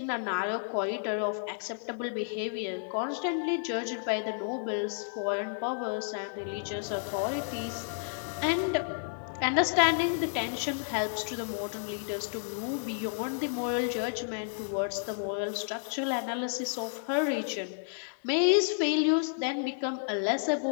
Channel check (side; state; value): right; silent; digital silence